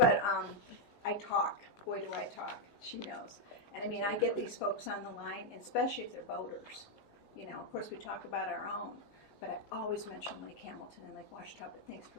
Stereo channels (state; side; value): late; right; 19 ms